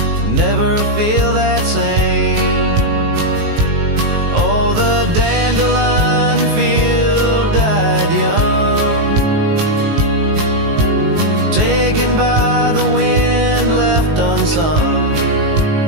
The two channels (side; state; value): left; late; 19 ms